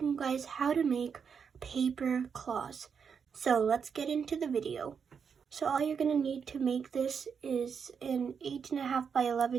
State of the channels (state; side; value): quieter; left; 6.5 dB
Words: you guys how to make paper claws. So let's get into the video. So all you're gonna need to make this is an 8.5 by